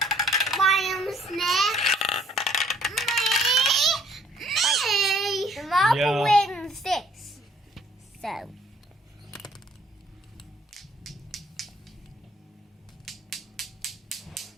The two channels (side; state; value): both; normal; correlation 0.60